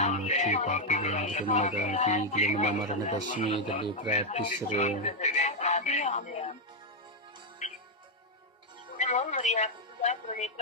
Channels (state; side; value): normal; both; correlation 0.00